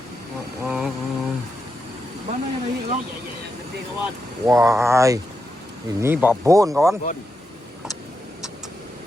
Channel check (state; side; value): normal; both; correlation 0.85